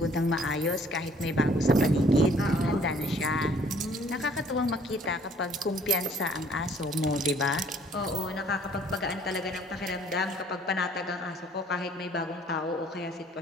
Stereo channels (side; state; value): both; normal; correlation 0.58